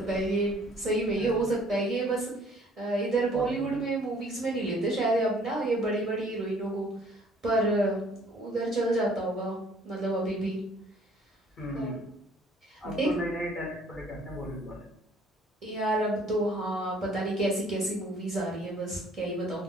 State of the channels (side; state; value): both; normal; correlation 0.57